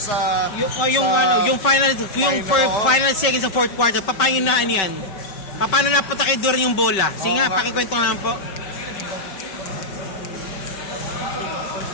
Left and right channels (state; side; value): late; right; 5.2 ms